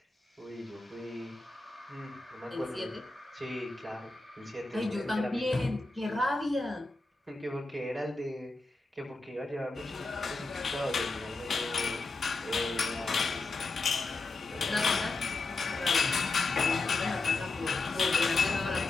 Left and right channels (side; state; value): right; quieter; 3.4 dB